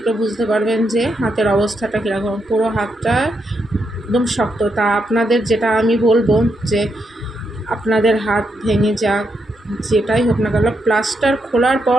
বুঝতে পারবেন যে হাতের অবস্থাটা কীরকম। পুরো হাতটা একদম শক্ত। তা আপনাদের যেটা আমি বলবো যে আপনাদের হাত ভেঙে যাক, যেটাই হোক না কেন, প্লাস্টার খোলার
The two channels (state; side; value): normal; both; correlation 0.81